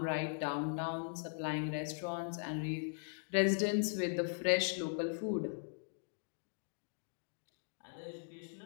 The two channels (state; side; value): silent; right; digital silence